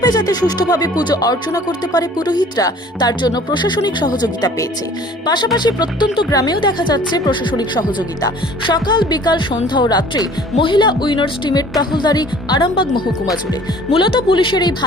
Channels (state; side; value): normal; both; correlation 0.50